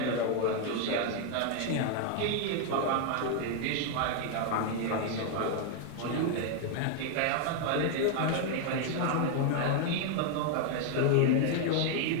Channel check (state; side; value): different; both; correlation 0.00